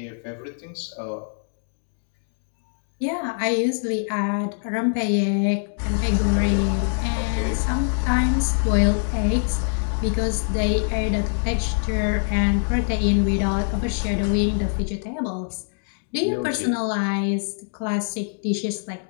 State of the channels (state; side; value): silent; right; digital silence